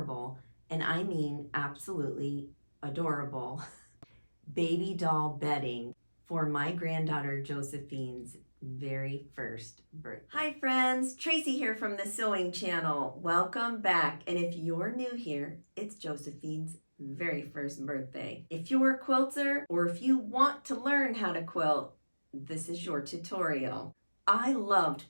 and I mean absolutely adorable, baby doll bedding for my granddaughter Josephine's very first birthday. Hi friends, Tracy here from the Sewing Channel. Welcome back, and if you're new here, it's Josephine's very first birthday. If you're a quilter or if you want to learn how to quilt, this is your tutorial. I loved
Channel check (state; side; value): inverted; both; correlation -1.00